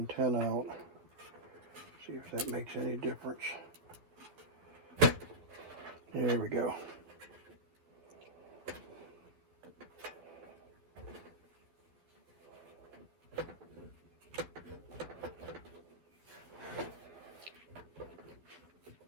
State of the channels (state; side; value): late; left; 11 ms